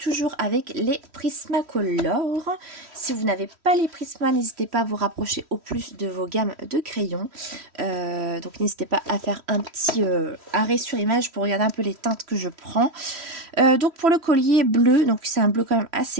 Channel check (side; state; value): left; late; 3.1 ms